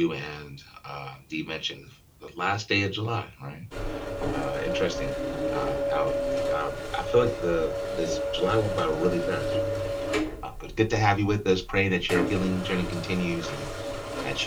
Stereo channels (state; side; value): identical; both; correlation 1.00